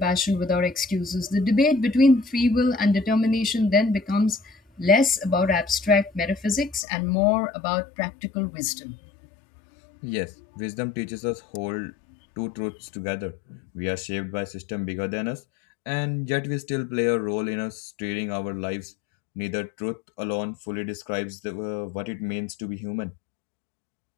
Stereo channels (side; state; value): right; drops out; at 6.9 s